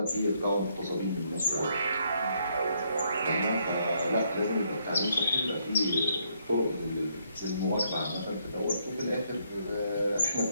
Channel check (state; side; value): inverted; both; correlation -0.72